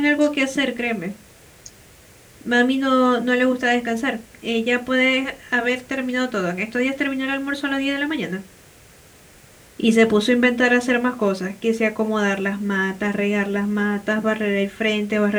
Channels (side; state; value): both; identical; correlation 1.00